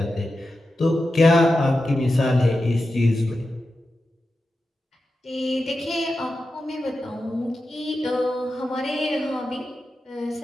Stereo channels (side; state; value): both; normal; correlation 0.91